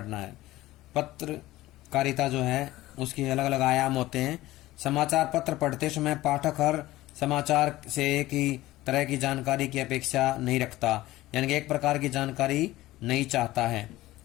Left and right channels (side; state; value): right; quieter; 17.0 dB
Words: है। पत्रकारिता जो है उसके अलग अलग आयाम होते हैं। समाचार पत्र पढ़ते समय पाठक हर समाचार से एक ही तरह की जानकारी की अपेक्षा नहीं रखता, यानी कि एक प्रकार की जानकारी नहीं चाहता है।